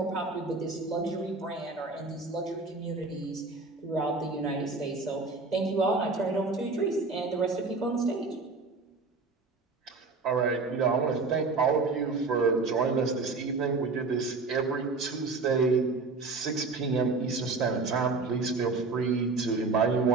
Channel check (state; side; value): quieter; left; 3.9 dB